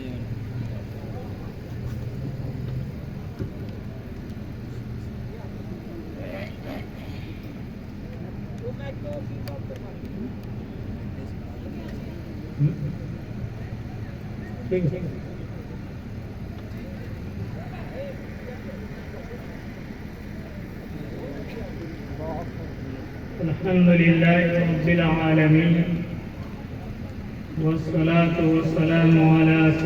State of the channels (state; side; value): identical; both; correlation 1.00